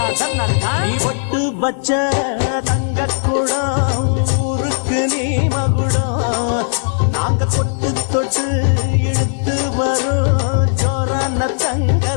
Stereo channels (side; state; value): right; silent; digital silence